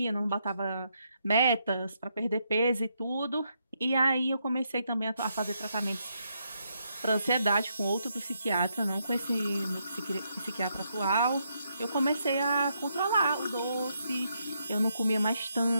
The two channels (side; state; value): both; inverted; correlation -0.78